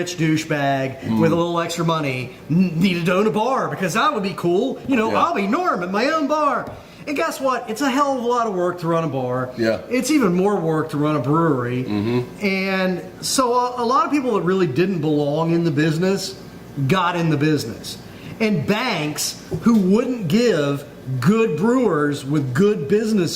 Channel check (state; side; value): identical; both; correlation 1.00